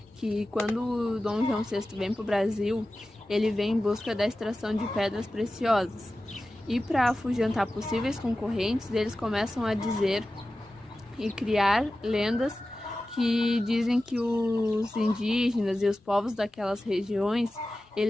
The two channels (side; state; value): both; normal; correlation 0.95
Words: que quando o Dom João VI vem para o Brasil, ele vem em busca da extração de pedras preciosas. E para afugentar possíveis concorrentes, eles começam a dizer e criar lendas que dizem que os indígenas e os povos daquelas regiões,